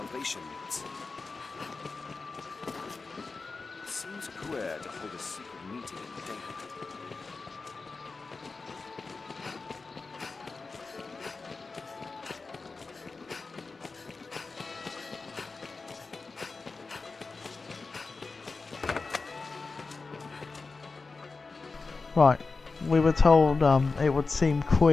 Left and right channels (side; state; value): right; quieter; 4.1 dB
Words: meets. It seems queer to hold a secret meeting in daylight. Right, we were told it would seem